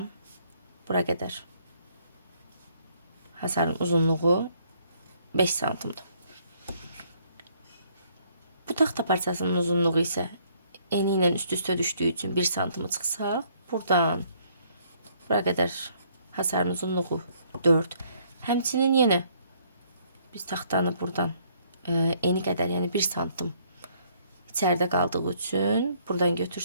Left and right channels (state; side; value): inverted; both; correlation -0.65